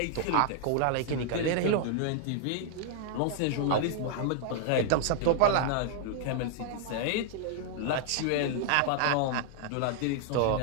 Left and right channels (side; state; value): both; different; correlation 0.00